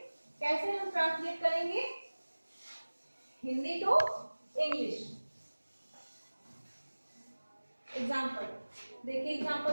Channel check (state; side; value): inverted; both; correlation -1.00